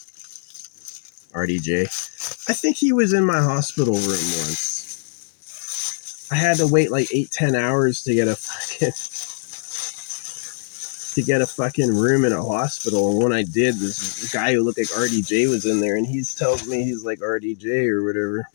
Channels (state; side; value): silent; right; digital silence